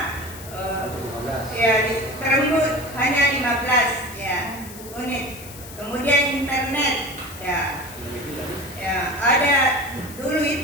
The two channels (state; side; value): noise; left; hiss, 16 dB below the sound